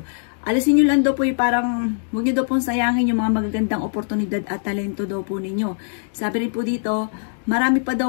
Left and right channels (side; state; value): right; silent; digital silence